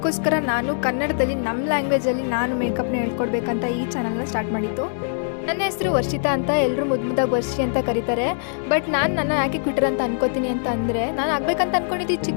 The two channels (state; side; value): silent; right; digital silence